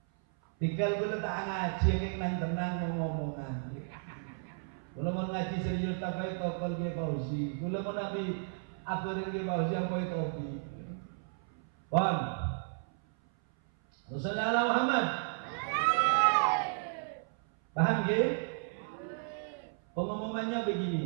Tinggal gue tak ngaji yang tenang ngomongan. Kalau mau ngaji serius tak baik tokol Kiai Fauzi. Kalau mau nabi aturin Kiai Fauzi apa itu topi. Paham? Rasulullah Muhammad. Paham Kiai? Pengumumannya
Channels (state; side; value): silent; left; 55 dB below the other